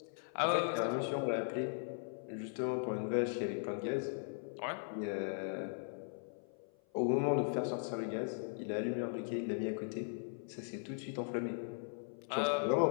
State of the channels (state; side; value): silent; right; 52 dB below the other